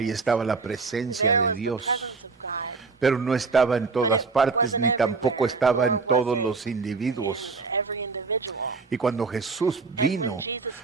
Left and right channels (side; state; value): left; quieter; 4.4 dB